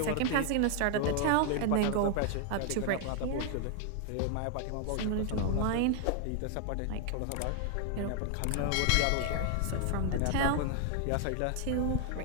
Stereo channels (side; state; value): both; different; correlation 0.00